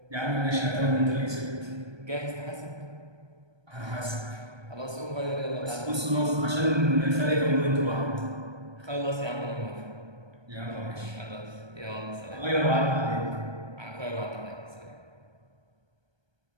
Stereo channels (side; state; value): left; late; 1.3 ms